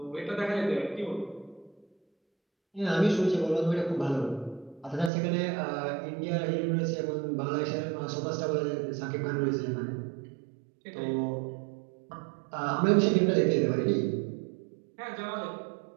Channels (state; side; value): drops out; left; at 5.1 s